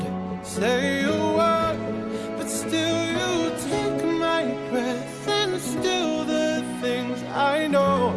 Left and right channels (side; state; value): both; identical; correlation 1.00